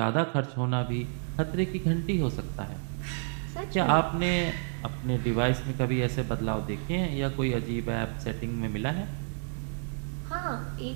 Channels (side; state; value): left; silent; 58 dB below the other